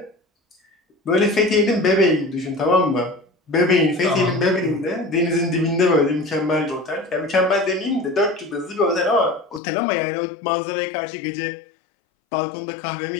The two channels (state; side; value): drops out; right; at 9.6 s